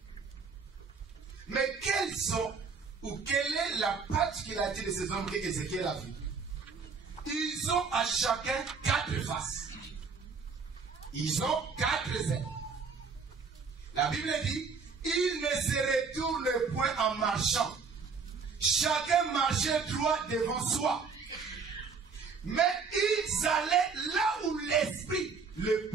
Mais quelles sont, ou quelle est la particularité de ces hommes que Ézéchiel a vu? Ils ont à chacun 4 faces. Ils ont 4 ailes. La Bible dit, ils ne se retournent point en marchant. Chacun marchait droit devant soi. Mais ils allaient là où l'esprit le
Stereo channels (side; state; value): left; quieter; 5.2 dB